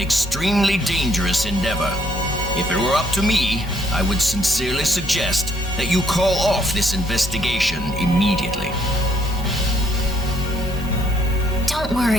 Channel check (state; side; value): normal; both; correlation 0.69